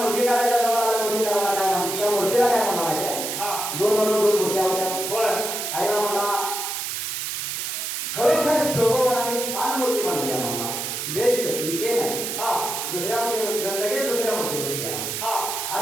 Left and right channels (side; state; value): right; noise; hiss, 3 dB below the sound